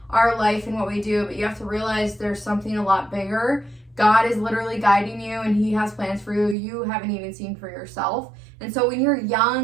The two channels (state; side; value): drops out; left; at 6.6 s